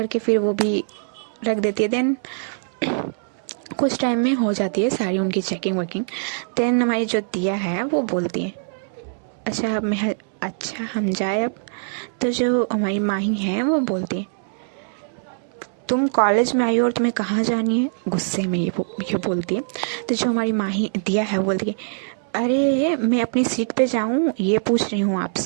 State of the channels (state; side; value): silent; left; 64 dB below the other